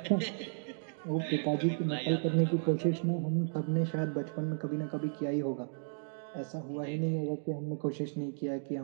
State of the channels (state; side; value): silent; left; digital silence